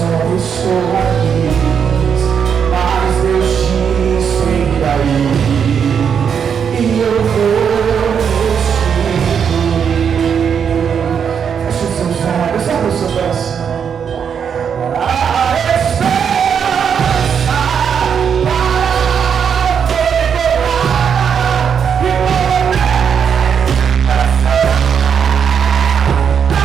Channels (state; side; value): quieter; left; 7.3 dB